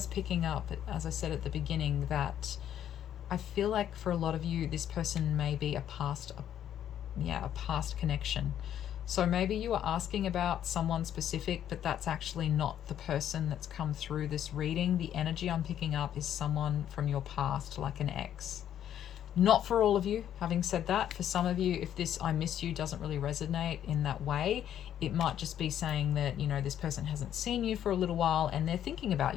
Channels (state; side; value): quieter; right; 10.4 dB